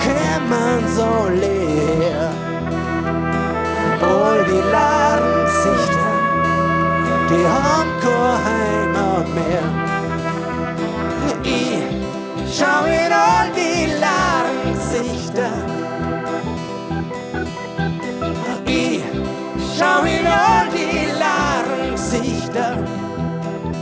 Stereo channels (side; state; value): both; identical; correlation 1.00